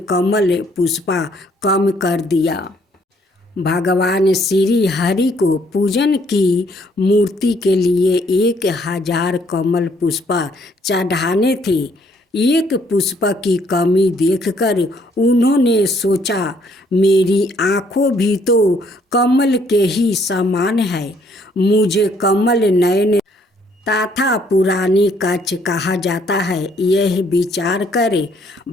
कमल पुष्पा कम कर दिया। भगवान श्री हरि को पूजन की मूर्ति के लिए 1000 कमल पुष्पा चढ़ाने थे। एक पुष्प की कमी देखकर उन्होंने सोचा, मेरी आँखों भी तो कमल के ही समान है, मुझे कमल नयन तथा पुरानी कच्छ कहा जाता है। यह विचार कर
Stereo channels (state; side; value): normal; both; correlation 0.66